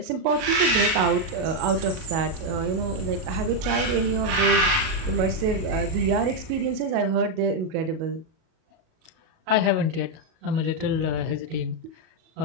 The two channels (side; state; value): left; late; 37 ms